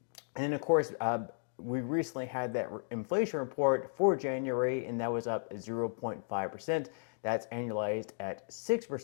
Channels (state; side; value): silent; right; digital silence